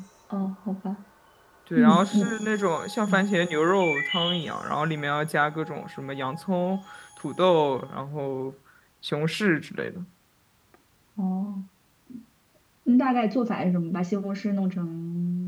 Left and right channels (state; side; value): identical; both; correlation 1.00